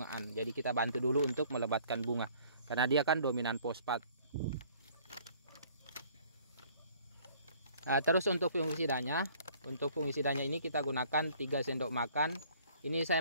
Jadi kita bantu dulu untuk melebatkan bunga karena dia kan dominan fosfat. Terus untuk fungisidanya ini kita gunakan 3 sendok makan. Ini saya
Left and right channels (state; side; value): inverted; both; correlation -0.57